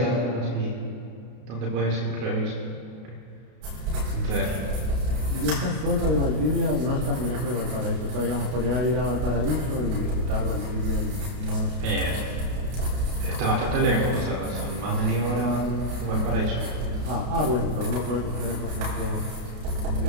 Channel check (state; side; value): late; left; 32 ms